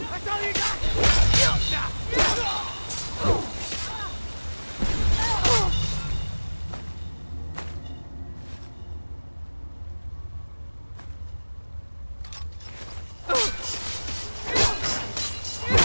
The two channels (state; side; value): inverted; both; correlation -1.00